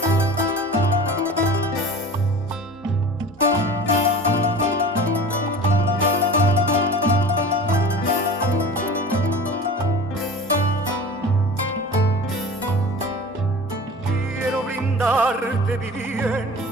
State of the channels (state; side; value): normal; both; correlation 0.38